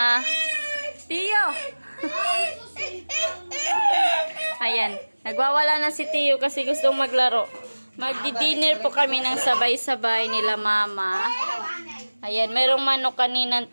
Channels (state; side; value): inverted; both; correlation -1.00